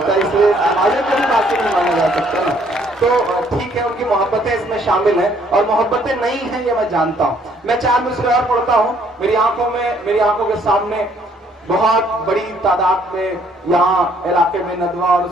इसलिए समाज को भी बासी नहीं माना जा सकता ना। तो ठीक है, उनकी मोहब्बतें इसमें शामिल हैं और मोहब्बतें नहीं हैं ये मैं जानता हूँ। मैं 4 मिसरे और पढ़ता हूँ। मेरी आंखों के सामने बहुत बड़ी तादाद में यहाँ इलाके में नदवा और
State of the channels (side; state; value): both; normal; correlation 0.64